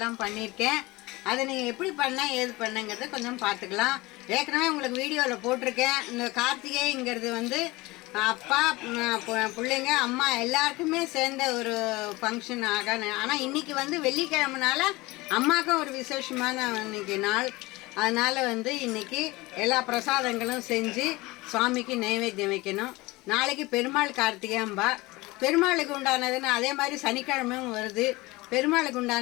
பண்ணியிருக்கேன். அதை நீங்கள் எப்படி ஏது பண்ணங்கிறத கொஞ்சம் பார்த்துக்கலாம். ஏற்கனவே உங்களுக்கு வீடியோவில் போட்டிருக்கேன். இந்த கார்த்திகைங்கிறது வந்து அப்பா, பிள்ளைங்க, அம்மா எல்லாருக்குமே சேர்ந்த ஒரு ஃபங்க்ஷன் ஆனால் இன்றைக்கி வந்து வெள்ளிக்கிழமைனால அம்மாவுக்கும் ஒரு விசேஷமான இன்னைக்கு நாள். அதனால் வந்து இன்றைக்கி எல்லா பிரசாதங்களும் செஞ்சு சுவாமிக்கு நைவேத்தியம் வைக்கணும். நாளைக்கு பெருமாள் கார்த்திகைம்பா. பெருமாளுக்கு உண்டானதுன்னு அதே மாதிரி சனிக்கிழமையும் வருது. பெருமாளுக்கு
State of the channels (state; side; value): quieter; right; 21.6 dB